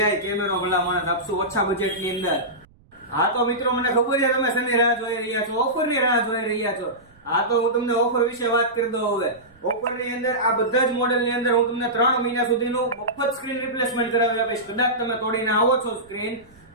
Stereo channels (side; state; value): right; noise; rumble, 29 dB below the sound